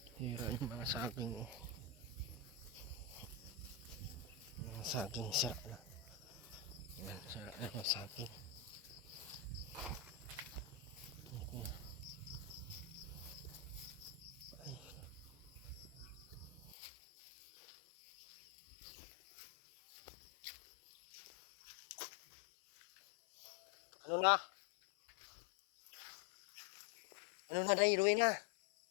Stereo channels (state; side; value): drops out; right; at 16.8 s